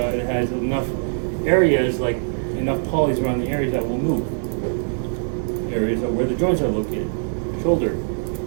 has enough areas, like enough polys around the areas that will move. Areas of where the joints are located: shoulder,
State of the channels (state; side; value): silent; left; digital silence